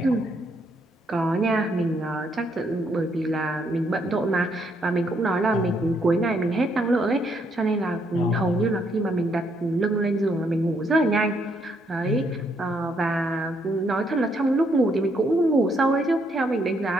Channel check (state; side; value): normal; both; correlation 0.73